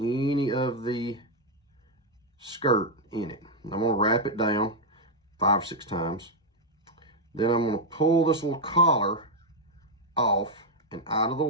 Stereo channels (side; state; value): both; normal; correlation 0.00